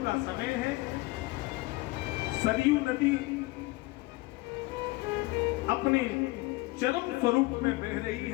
का समय है, सरयू नदी अपने चरम स्वरूप में बह रही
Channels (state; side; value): quieter; right; 21.6 dB